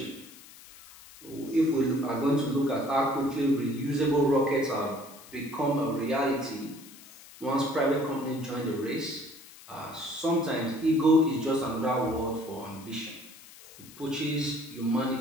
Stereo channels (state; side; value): noise; left; hiss, 20 dB below the sound